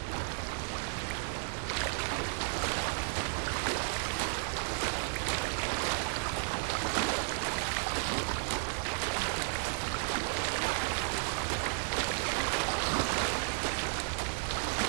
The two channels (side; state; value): left; silent; 55 dB below the other